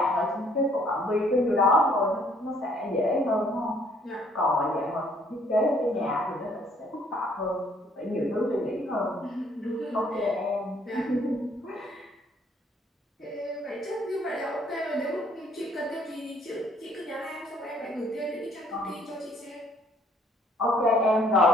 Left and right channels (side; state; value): both; normal; correlation 0.63